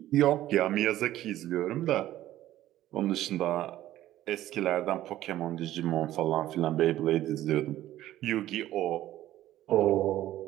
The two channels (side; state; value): left; quieter; 14.0 dB